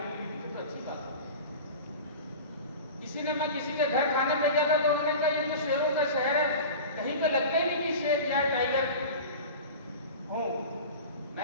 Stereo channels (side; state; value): both; inverted; correlation -0.34